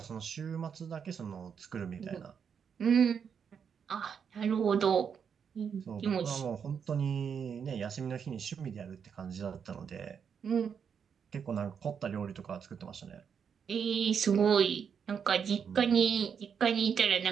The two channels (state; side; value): quieter; left; 7.1 dB